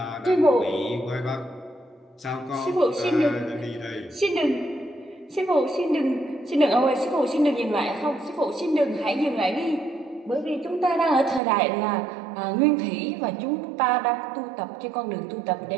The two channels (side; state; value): left; drops out; at 11.4 s